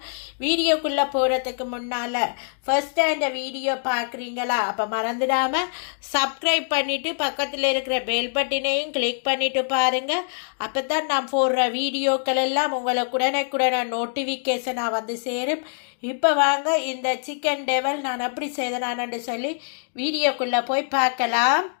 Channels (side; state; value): right; silent; digital silence